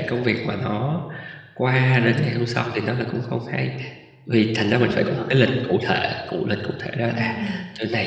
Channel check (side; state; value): both; identical; correlation 1.00